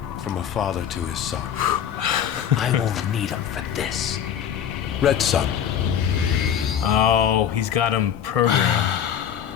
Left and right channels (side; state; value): right; quieter; 9.0 dB